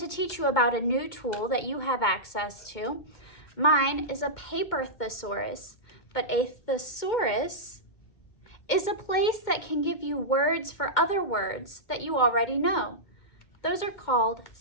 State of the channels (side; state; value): right; late; 2.2 ms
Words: teach you about a new tool that you have access to. Mine is a paper thesaurus, but a thesaurus is a place that can give you words for other words that you already know. Those are called